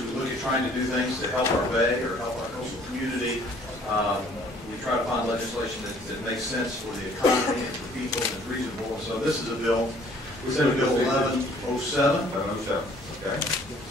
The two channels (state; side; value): normal; both; correlation 0.57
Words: we look at trying to do things to help our bay or help our coastal community, we try to find legislation that makes sense for the economy and for people and is reasonable. And so this is a bill, Senate Bill 1107. 1107, okay.